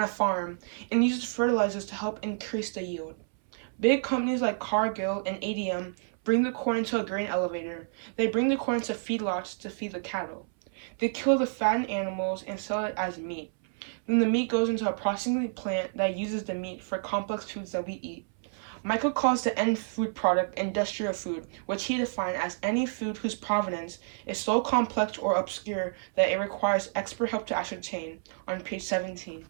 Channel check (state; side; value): silent; left; 58 dB below the other